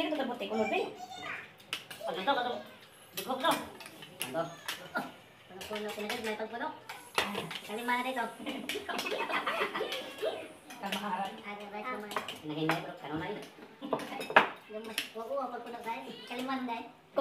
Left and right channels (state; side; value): identical; both; correlation 1.00